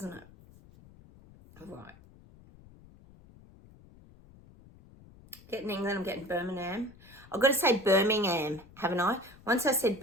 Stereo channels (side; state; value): left; noise; rumble, 23 dB below the sound